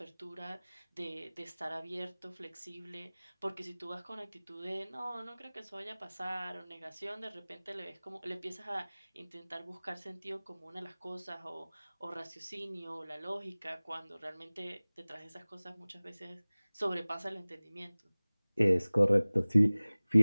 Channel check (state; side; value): inverted; both; correlation -0.99